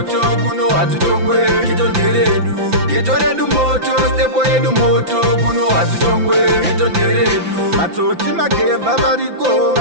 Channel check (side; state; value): left; late; 5.9 ms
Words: kuno hatitongwe. Ghetto redu, Ghetto redu moto, stepo yedu moto, kuno hatitongwe. Ghetto redu, matsotsi magevha variko